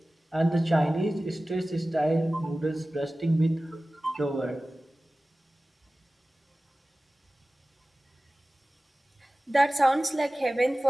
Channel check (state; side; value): normal; both; correlation 0.97